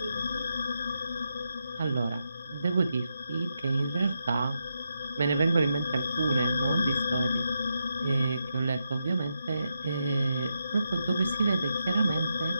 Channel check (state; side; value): inverted; both; correlation -0.84